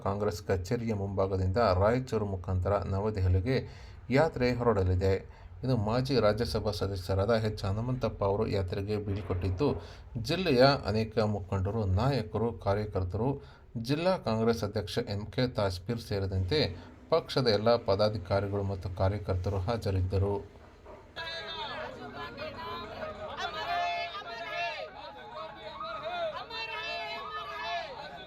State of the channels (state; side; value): identical; both; correlation 1.00